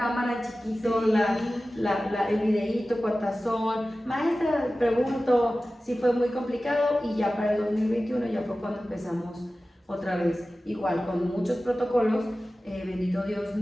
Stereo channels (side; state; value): both; normal; correlation 0.96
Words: chiquito, el videíto, cuántas son. Maestra, pregunto, sí fue muy complicado y ya para el 2021 ya fue cuando empezamos otra vez, igual con muchos protocolos, bendito Dios,